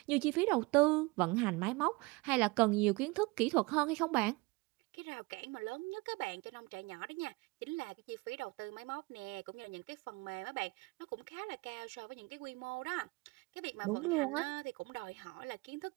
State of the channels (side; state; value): left; quieter; 24.8 dB